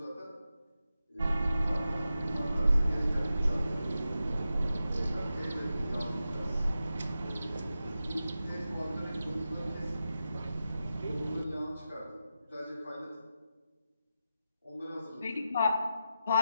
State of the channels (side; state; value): both; inverted; correlation -0.90